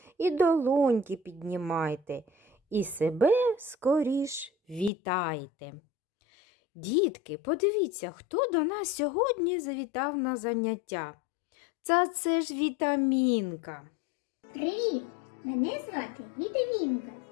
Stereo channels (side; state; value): right; drops out; at 4.9 s